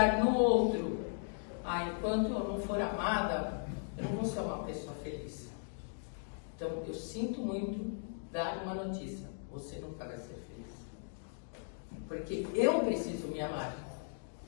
no outro. Enquanto eu não for amada, eu não vou ser uma pessoa feliz. Então, eu sinto muito dar uma notícia. Você não vai ser feliz. Porque eu preciso me amar.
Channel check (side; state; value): right; silent; digital silence